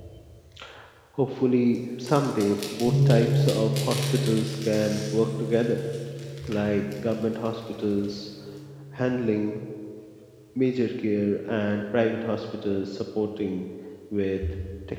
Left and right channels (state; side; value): identical; both; correlation 1.00